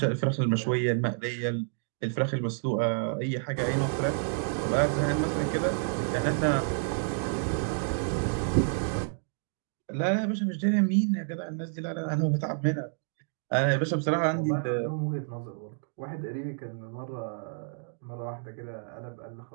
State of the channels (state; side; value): silent; left; digital silence